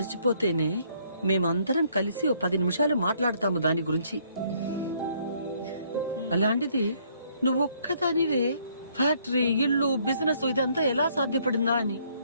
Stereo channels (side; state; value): both; inverted; correlation -0.66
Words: మేమందరం కలిసి 10 నిమిషాలు మాట్లాడతాము దాని గురించి. అలాంటిది నువ్వు ఒక్కదానివే ఫ్యాక్టరీ, ఇల్లు, బిజినెస్ ఇదంతా ఎలా సాధ్యపడిందా అని.